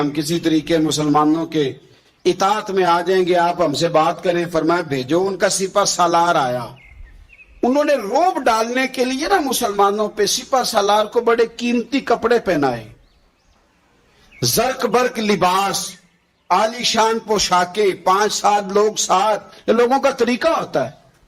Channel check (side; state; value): both; identical; correlation 1.00